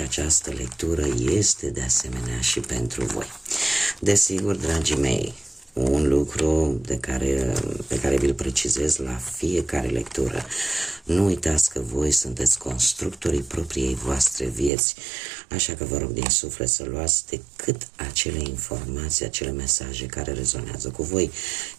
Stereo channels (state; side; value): drops out; left; at 14.7 s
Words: lectură este de asemenea și pentru voi. Desigur, dragii mei, un lucru pe care vi-l precizez la fiecare lectură: nu uitați că voi sunteți constructorii propriei voastre vieți, așa că vă rog din suflet să luați decât acele informații, acele mesaje care rezonează cu voi,